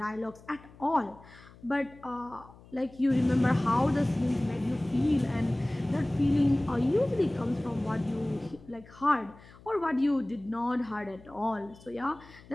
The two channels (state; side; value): noise; left; hum, 22 dB below the sound